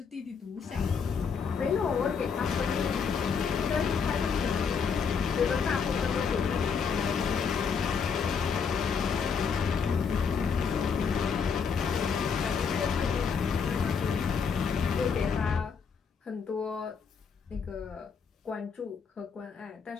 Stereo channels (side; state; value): right; quieter; 6.1 dB